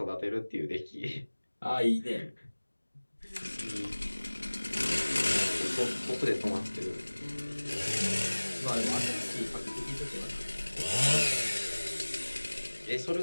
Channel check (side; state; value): both; inverted; correlation -1.00